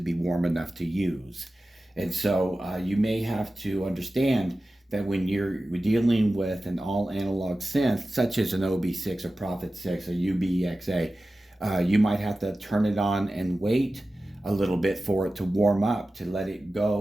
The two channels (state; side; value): normal; both; correlation 0.95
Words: warm enough to use. And so you may have to understand that when you're dealing with an all analog synth, such as an OB6 or Prophet 6 or ubx-a, you might have to turn it on and wait a little bit for it to warm up, to let it